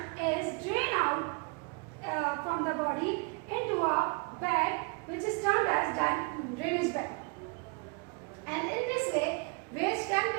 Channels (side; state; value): left; quieter; 33.3 dB